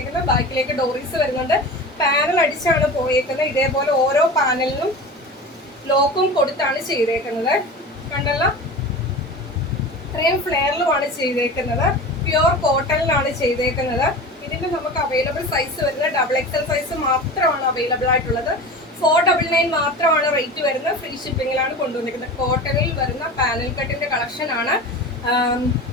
ബാക്കിലേക്ക് ഡോറീസ് വരുന്നുണ്ട്. പാനൽ അടിച്ചാണ് പോയേക്കുന്നത്. ഇതേപോലെ ഓരോ പാനലിനും ലോക്കും കൊടുത്താണ് ചെയ്തേക്കുന്നത്. കണ്ടല്ലോ, ഇത്രയും ഫ്ലെയറിലുമാണ് ചെയ്തേക്കുന്നത്. പ്യുവർ കോട്ടണിലാണ് ചെയ്തേക്കുന്നത്. ഇതിന്റെ നമുക്ക് അവൈലബിൾ സൈസ് വരുന്നത് XXL സൈസ് മാത്രമാണ് അവൈലബിൾ ആയിട്ടുള്ളത്. 499 മാത്രമാണ് റേറ്റ് വരുന്നത്. ഫ്രീ ഷിപ്പിങ്ങിലാണ് കൊണ്ടുവന്നിരിക്കുന്നത്. കോട്ടണിൽ വരുന്ന പാനൽ കട്ടിന്റെ കളക്ഷൻ ആണ്.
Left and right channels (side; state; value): both; normal; correlation 0.32